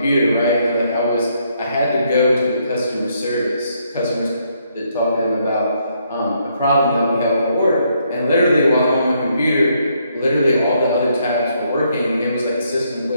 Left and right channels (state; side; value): inverted; both; correlation -0.73